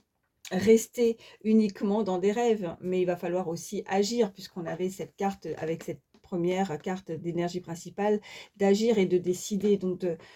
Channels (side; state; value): both; identical; correlation 1.00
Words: rester uniquement dans des rêves, mais il va falloir aussi agir, puisqu'on avait cette carte avec cette première carte d'énergie principale, d'agir et de décider. Donc,